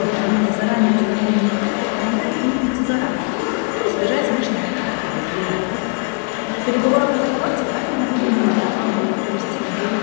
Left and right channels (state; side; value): quieter; right; 36.3 dB